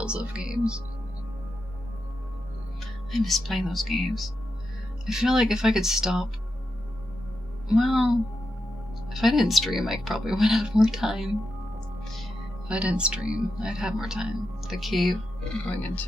of games. I miss playing those games. I feel like if I could stop, well, if I didn't stream, I probably would have more time. If I didn't stream, I'd have more time. The cave going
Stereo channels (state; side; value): normal; both; correlation 0.87